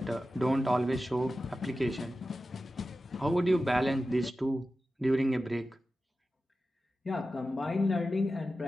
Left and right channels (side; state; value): both; normal; correlation 0.93